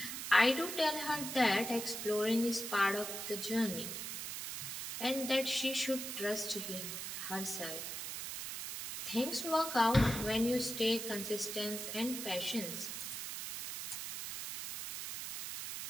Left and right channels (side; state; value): right; noise; hiss, 6 dB below the sound